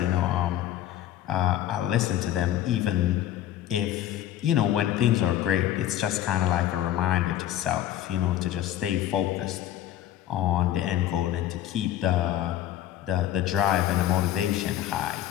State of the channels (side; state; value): right; quieter; 12.3 dB